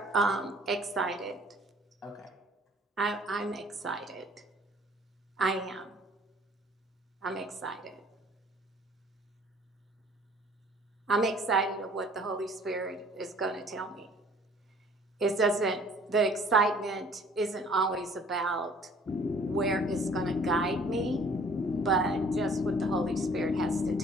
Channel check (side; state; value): both; normal; correlation 0.54